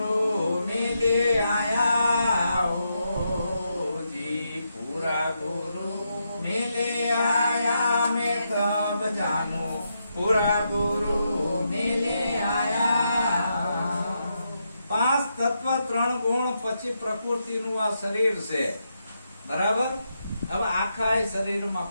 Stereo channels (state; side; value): inverted; both; correlation -0.82